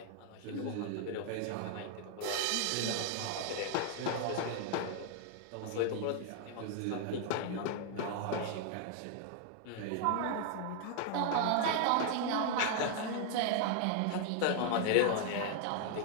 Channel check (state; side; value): different; both; correlation 0.00